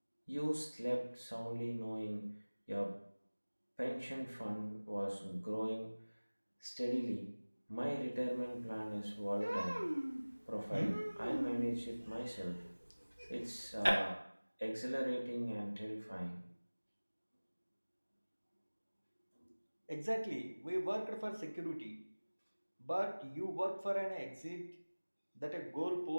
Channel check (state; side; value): inverted; both; correlation -1.00